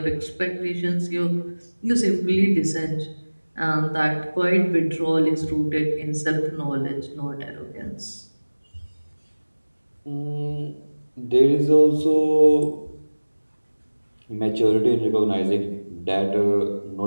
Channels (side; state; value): both; inverted; correlation -1.00